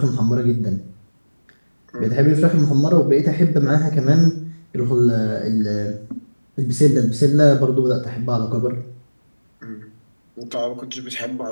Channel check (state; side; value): inverted; both; correlation -1.00